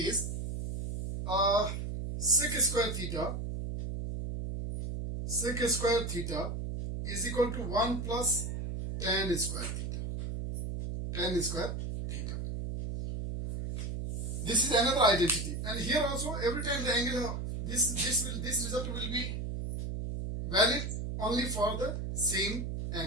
sec square theta is equal to 1 plus tan square theta. Tan square theta. This is another identity, and here also every time the angle this result will be valid only for the same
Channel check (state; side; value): noise; right; hum, 4 dB below the sound